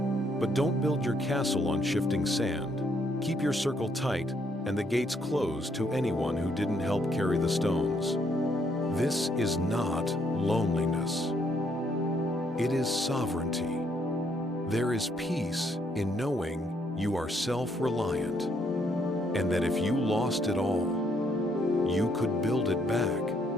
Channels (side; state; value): both; normal; correlation 0.71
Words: but don't build your castle on shifting sand. Keep your circle tight and the gates closed to anyone who didn't help carry the stones. This is not loneliness. It is sovereignty. There is peace in knowing you are self-reliant, and that if you lost it all, you could build it back,